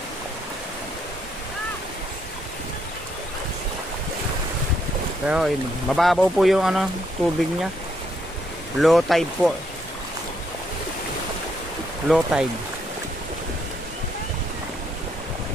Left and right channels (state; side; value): normal; both; correlation 0.74